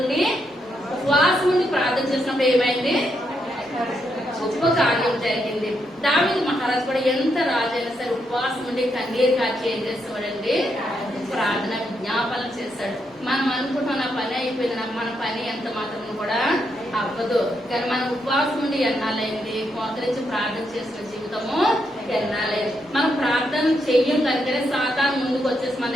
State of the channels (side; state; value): both; normal; correlation 0.80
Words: ఉండి ఉపవాసం ఉండి ప్రార్థన చేసినప్పుడు ఏమైంది? గొప్ప కార్యం జరిగింది. దావీదు మహారాజు కూడా ఎంత రాజైనా సరే ఉపవాసం ఉండి కన్నీరు కాచి ఏం చేస్తాడండి? ప్రార్థన విజ్ఞాపన చేస్తాడు. మనం అనుకుంటున్న నా పని అయిపోయింది, మన పని ఎంత మాత్రం కూడా అవ్వదు. కానీ మనం ఉపవాసం ఉండి ఎన్నాలైంది? మోకరించి ప్రార్థన చేసిన జీవితము ఎన్నాలైంది. మనం ప్రార్థన చెయ్యం కనుకనే సాతాను ముందుకు వచ్చేసి మన